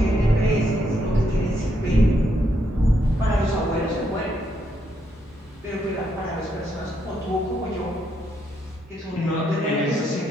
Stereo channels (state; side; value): normal; both; correlation 0.76